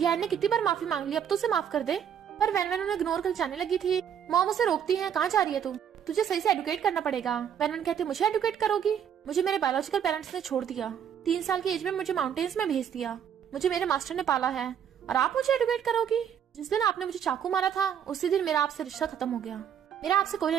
ने कितनी बार माफी मांग ली, अब तो उसे माफ कर दे। पर वैन उन्हें इग्नोर कर जाने लगी थी। मॉम उसे रोकती है कहाँ जा रही है तू, तुझे सही से एडुकेट करना पड़ेगा। वैन कहती है मुझे एडुकेट करोगी? मुझे मेरे बायोलॉजिकल पेरेंट्स ने छोड़ दिया, 3 साल की एज में मुझे माउंटेन्स में भेज दिया, मुझे मेरे मास्टर ने पाला है और आप मुझे एडुकेट करोगी? जिस दिन आपने मुझे चाकू मारा था उसी दिन मेरा आपसे रिश्ता खत्म हो गया, मेरा आपसे कोई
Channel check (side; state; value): left; quieter; 8.6 dB